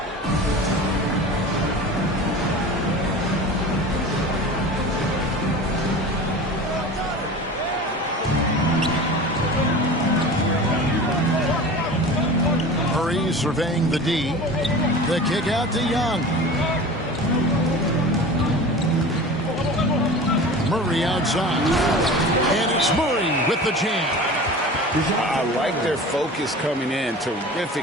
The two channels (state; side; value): normal; both; correlation 0.36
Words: Murray surveying the D. The kick out to Young. Murray outside. And it's Murray with the jam. I like their focus coming in.